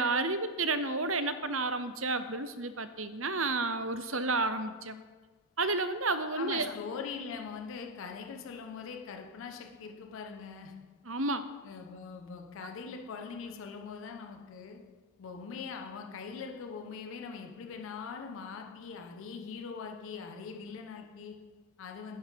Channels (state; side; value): normal; both; correlation 0.02